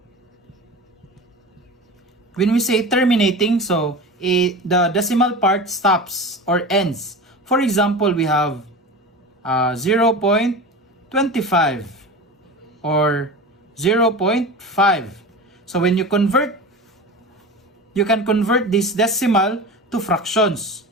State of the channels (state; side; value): normal; both; correlation 0.31